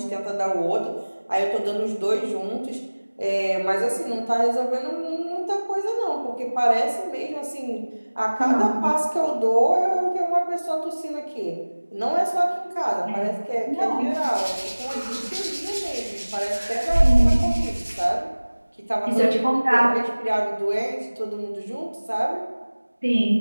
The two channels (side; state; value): both; inverted; correlation -1.00